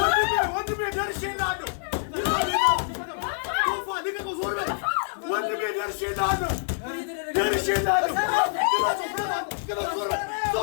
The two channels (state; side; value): silent; right; digital silence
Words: ወንድሜ ደርሼልሃለሁ። ቶፋ ልቀቀው፣ ዞር በል ወንድሜ። ደርሼልሃለሁ።